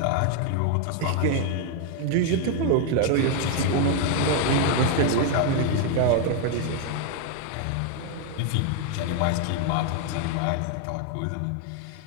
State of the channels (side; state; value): both; different; correlation 0.00